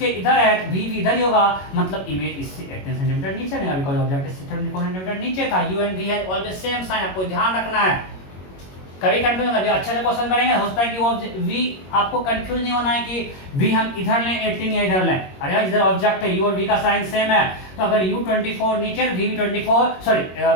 इधर है तो v भी इधर ही होगा, मतलब इमेज इससे 18 सेंटीमीटर नीचे नहीं, बिकॉज ऑब्जेक्ट इससे 24 सेंटीमीटर नीचे था। u and v have always same sign, आपको ध्यान रखना है। कभी कंफ्यूज अभी अच्छे से क्वेश्चन करेंगे, हो सकता है कि वो v आपको कंफ्यूज नहीं होना है कि v हम इधर लें 18 या इधर लें। अरे यार इधर ऑब्जेक्ट है, u और v का साइन सेम है, तो अगर u 24 नीचे, v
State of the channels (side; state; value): right; late; 21 ms